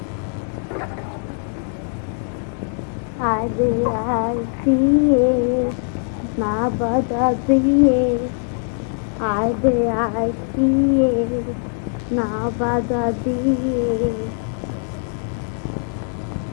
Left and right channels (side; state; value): right; silent; 65 dB below the other